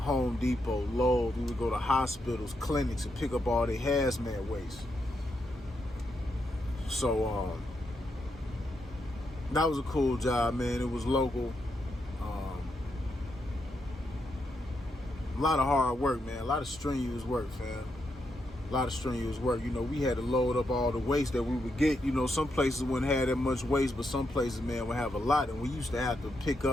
Depot, Lowe's. We would go to hospitals, clinics, and pick up all their hazmat waste. So that was a cool job, man. It was local. A lot of hard work, man. A lot of strenuous work, fam. A lot of strenuous work. You know, we had to load up all the waste that we would get. You know, some places wouldn't have that much waste, but some places, man, would have a lot. And we used to have to pick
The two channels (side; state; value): both; normal; correlation 0.82